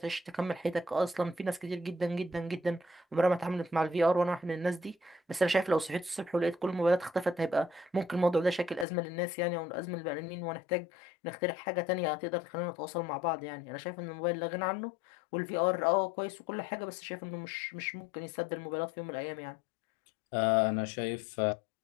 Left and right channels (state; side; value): drops out; right; at 8.8 s